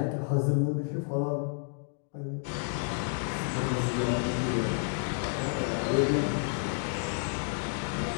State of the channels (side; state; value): right; silent; 57 dB below the other